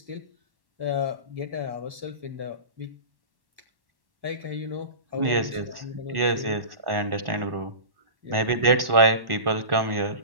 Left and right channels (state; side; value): late; left; 1.1 ms